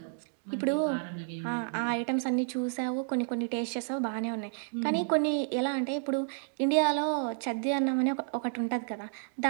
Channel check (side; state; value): left; silent; digital silence